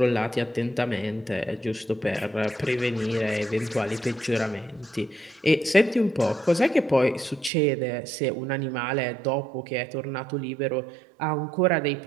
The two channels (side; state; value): left; drops out; at 7.5 s